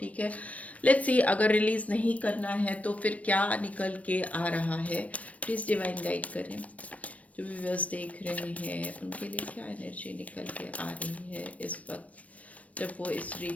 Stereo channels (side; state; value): right; late; 0.067 ms